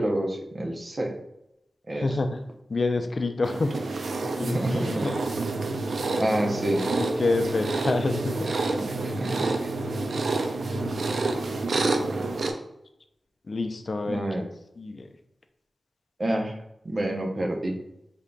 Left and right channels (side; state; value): both; normal; correlation 0.91